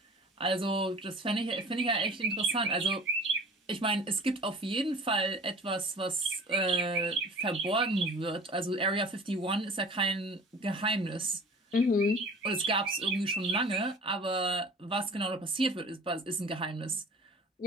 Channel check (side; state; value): both; normal; correlation 0.43